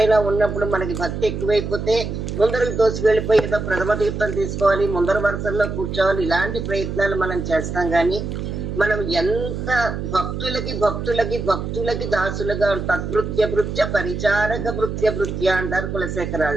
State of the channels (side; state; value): right; noise; hum, 5 dB below the sound